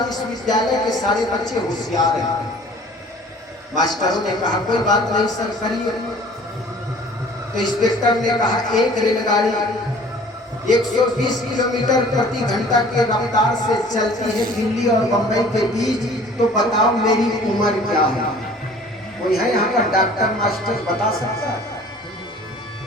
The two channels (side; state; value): both; normal; correlation 0.49